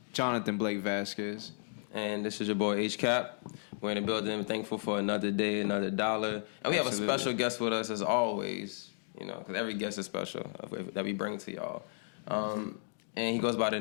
Jonathan Blake Vasquez. And this is your boy H-Cap. We're in the building. Thankful for another day, another dollar. And we have a special guest with us as always, because every guest is special that we bring to y'all. And he goes by the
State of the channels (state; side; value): silent; right; digital silence